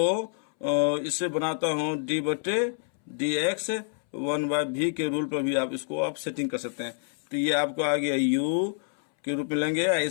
इससे बनाता हूँ d/dx 1/v के रूल पर भी आप इसको आप सेटिंग कर सकते हैं। तो ये आपको आ गया u के रूप में लेंगे, या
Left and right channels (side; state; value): right; silent; 60 dB below the other